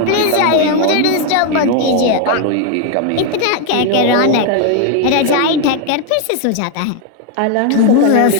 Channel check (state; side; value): different; both; correlation 0.01